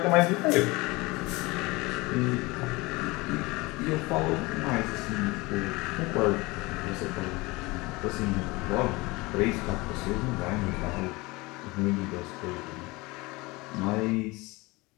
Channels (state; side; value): quieter; right; 23.3 dB